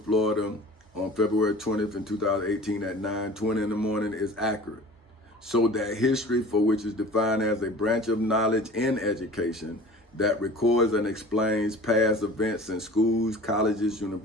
Florida on February 20th in 2018 at 9:20 in the morning is accurate. So that history, for which is defined as a branch of knowledge in education that records and explains past events in schools, colleges,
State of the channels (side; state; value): both; normal; correlation 0.42